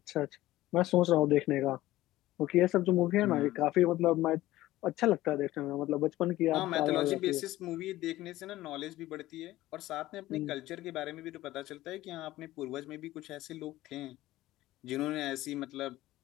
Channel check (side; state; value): right; quieter; 16.2 dB